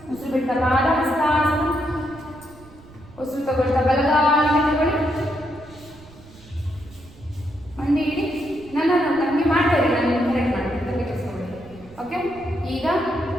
ಉಸಿರು ಬಿಡ್ತಾ ಪಾದ ಹಸ್ತಾಸನ. ಉಸಿರು ತಗೊಳ್ತಾ ಬಲಗಾಲಿಂದ ತಗೊಳ್ಳಿ. ಮಂಡಿ ಇಡಿ. ನಮಗೆ ಮಾಡ್ತಾ ಇರಿ, ನಾನು ಕರೆಕ್ಟ್ ಮಾಡ್ತೀನಿ, ತಲೆ ಕೆಡಿಸ್ಕೊಳ್ಳಿ. ಓಕೆ, ಈಗ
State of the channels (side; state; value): right; noise; rumble, 22 dB below the sound